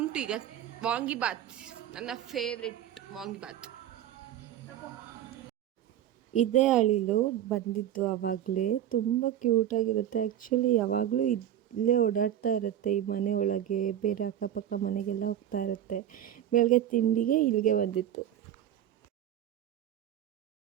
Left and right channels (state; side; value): quieter; left; 11.1 dB